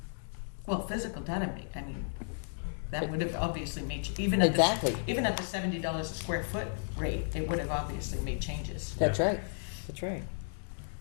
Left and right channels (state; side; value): silent; right; digital silence